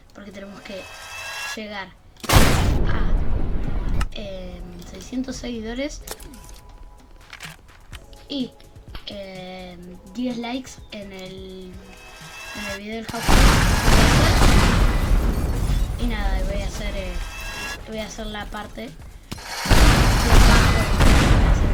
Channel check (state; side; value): identical; both; correlation 1.00